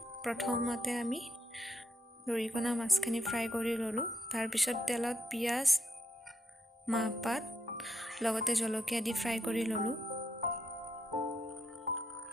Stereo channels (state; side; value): normal; both; correlation 0.79